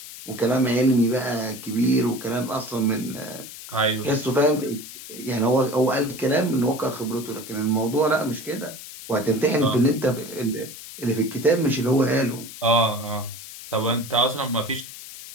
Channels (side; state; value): left; noise; hiss, 13 dB below the sound